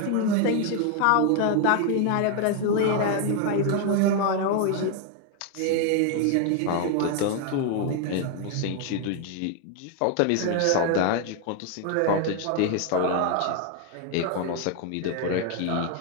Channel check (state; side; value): different; both; correlation 0.01